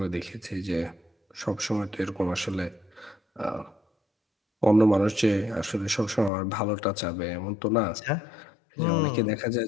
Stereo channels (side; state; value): right; drops out; at 6.3 s